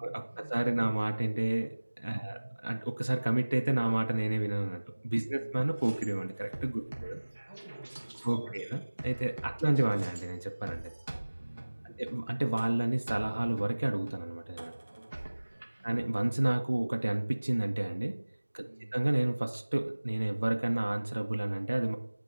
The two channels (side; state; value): both; inverted; correlation -1.00